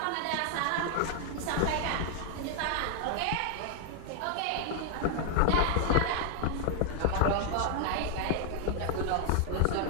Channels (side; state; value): both; different; correlation 0.00